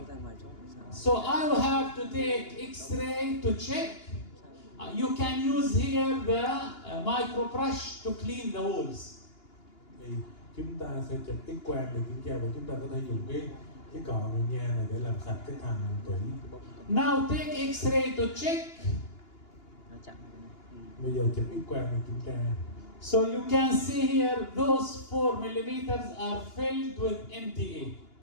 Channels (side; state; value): right; late; 2.9 ms